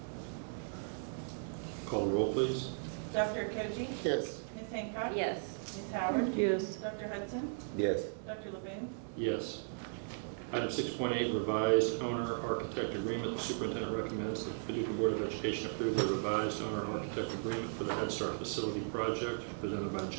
Call the roll, please. Dr. Koji? Yes. Ms. Hancock? Yes. Ms. Howard? Yes. Dr. Hudson? Yes. Dr. Levine? Yes. Item 6.8, revised owner-architect agreement. The superintendent recommends that the Paducah Board of Education approve the revised owner-architect agreement for the Head Start facility project presented by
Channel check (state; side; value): silent; left; digital silence